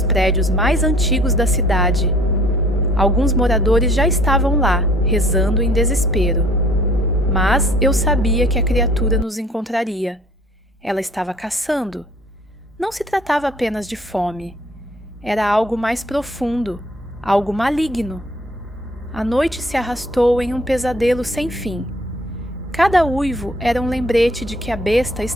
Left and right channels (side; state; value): both; normal; correlation 0.55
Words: prédios mais antigos da cidade. Alguns moradores já estavam lá, rezando em desespero. Mas eu sabia que a criatura nos encontraria. Ela estava caçando. Não se tratava apenas de fome. Era algo mais profundo, algo maligno. A noite se arrastou em um pesadelo sem fim. Cada uivo era um lembrete de que a besta